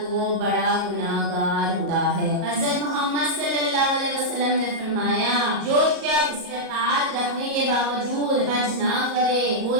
وہ بڑا گناہ گار ہوتا ہے۔ حضرت محمد صلی اللہ علیہ وسلم نے فرمایا، جو شخص استطاعت رکھنے کے باوجود حج نہ کرے وہ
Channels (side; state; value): left; late; 38 ms